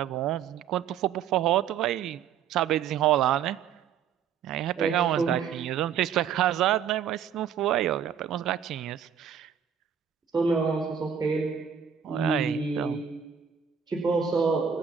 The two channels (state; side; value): quieter; left; 8.0 dB